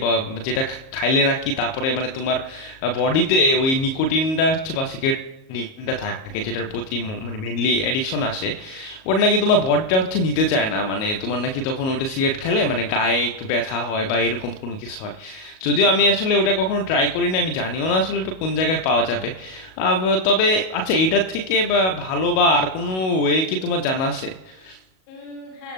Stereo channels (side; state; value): right; late; 38 ms